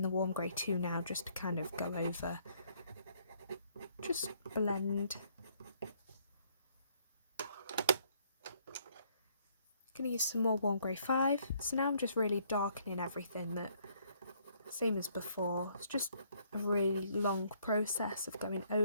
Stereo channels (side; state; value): both; inverted; correlation -0.66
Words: the warm grey 2 now just to kind of go over, just blend. Going to use some more warm grey 5. So now I'm just really darkening everything, that same as before. It's just a really long process of going